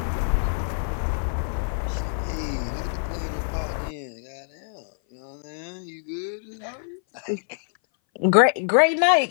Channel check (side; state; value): right; silent; 59 dB below the other